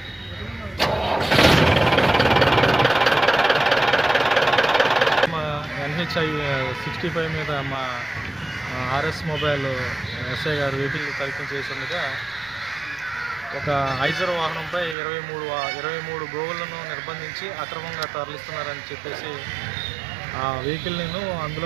NHI 65 మీద మా RS మొబైల్ ఎస్ఐ గారు వెహికల్ తనిఖీ చేస్తుండగా ఒక ఐజర్ వాహనంపై 23 గోవులను నిర్బంధించి అక్రమంగా తరలిస్తున్నారని చెప్పేసి ఆ వెహికల్ని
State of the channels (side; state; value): left; drops out; at 15.0 s